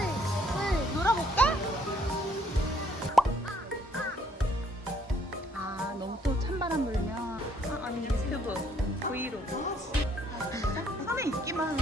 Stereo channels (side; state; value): both; normal; correlation 0.66